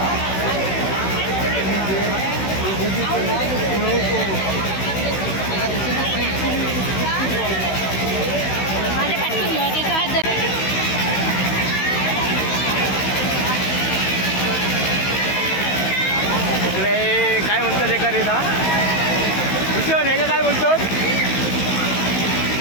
इकडे काय म्हणतात एका रेता भूषण हे काय बोलतो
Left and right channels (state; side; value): late; right; 16 ms